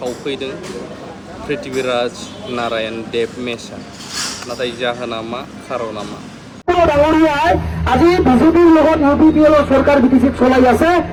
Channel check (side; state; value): both; identical; correlation 1.00